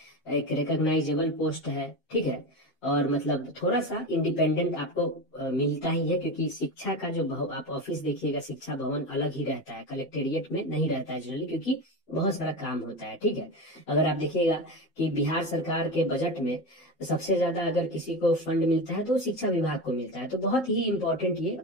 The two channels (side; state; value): right; late; 7.6 ms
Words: एक रिकॉग्नाइजेबल पोस्ट है, ठीक है। और मतलब थोड़ा सा इंडिपेंडेंट आपको मिलता ही है, क्योंकि शिक्षा का जो आप ऑफिस देखिएगा, शिक्षा भवन अलग ही रहता है, कलेक्टेरिएट में नहीं रहता है जनरली, क्योंकि बहुत सारा काम होता है, ठीक है। अगर आप देखिएगा कि बिहार सरकार के बजट में सबसे ज्यादा अगर किसी को फंड मिलता है तो शिक्षा विभाग को मिलता है। तो बहुत ही इंपॉर्टेंट ये